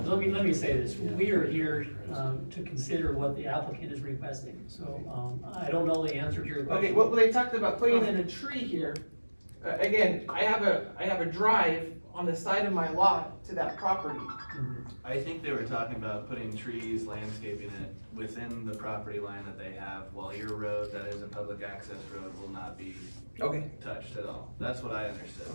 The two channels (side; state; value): both; inverted; correlation -1.00